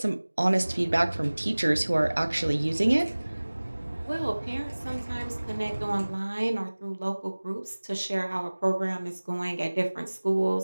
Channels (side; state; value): both; inverted; correlation -1.00